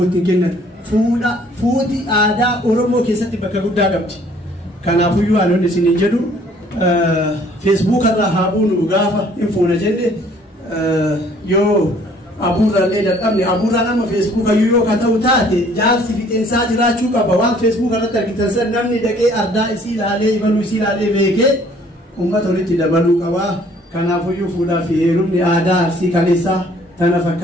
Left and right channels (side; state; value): both; normal; correlation 0.58